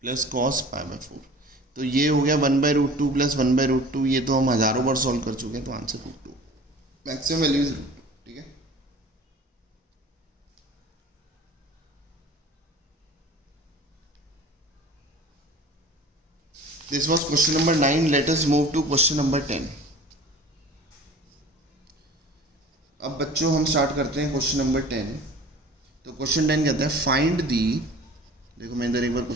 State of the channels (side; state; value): both; normal; correlation 0.44